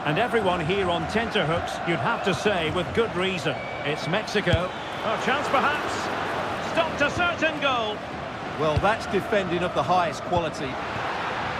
And everyone here on tenterhooks, you'd have to say, with good reason. It's Mexico. A chance perhaps. Stopped a certain goal. Well, that's defending of the highest quality.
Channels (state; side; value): identical; both; correlation 1.00